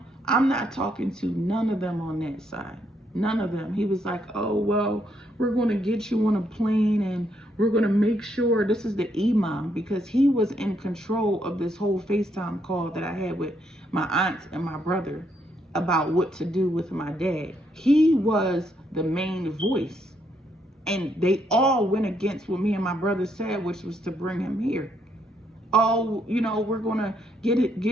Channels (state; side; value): normal; both; correlation 0.74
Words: I'm not talking to none of them on that side. None of them. He was like, oh, well, we're going to get you on a plane and we're going to make sure. This is the imam, because he was in control of this whole FaceTime call that I had with my aunt and my brother about what to do with my dad. He was the main voice. And they all went against what me and my brother said, which was to bring him here. Oh, we're going to